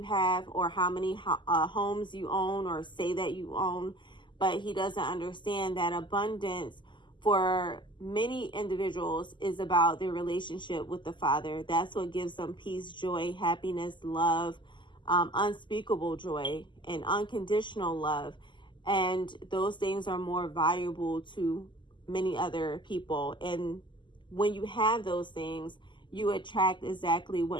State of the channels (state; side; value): late; right; 0.23 ms